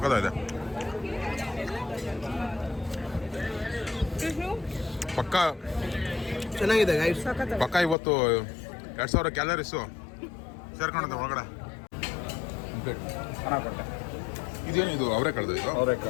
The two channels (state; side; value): drops out; right; at 8.0 s